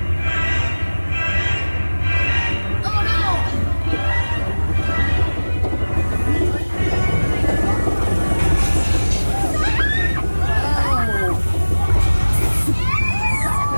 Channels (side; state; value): both; inverted; correlation -1.00